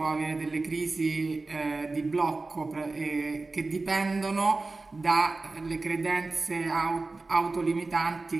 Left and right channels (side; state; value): left; quieter; 3.5 dB